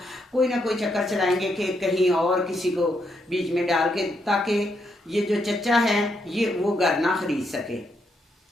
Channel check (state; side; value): normal; both; correlation 0.78